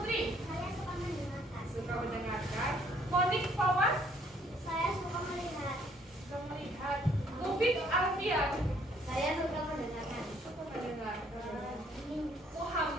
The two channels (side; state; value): both; normal; correlation 0.64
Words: Saya suka mendengarkan. suka mendengarkan. Monik Fawas, Saya suka melihat. suka melihat. Mufid Alfian, Saya suka mendengarkan. suka mendengarkan.